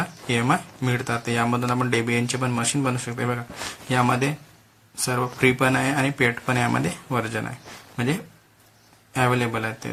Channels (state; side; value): identical; both; correlation 1.00